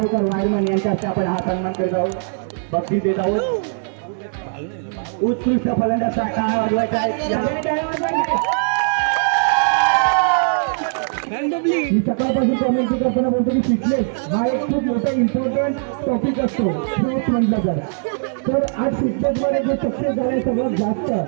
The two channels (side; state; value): left; silent; digital silence